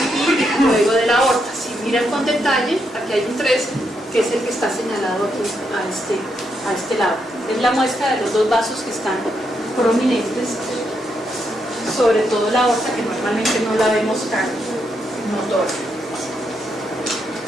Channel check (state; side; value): normal; both; correlation 0.80